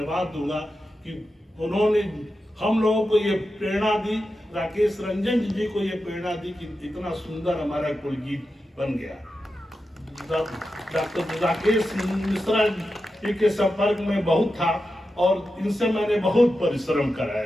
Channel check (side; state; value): both; normal; correlation 0.90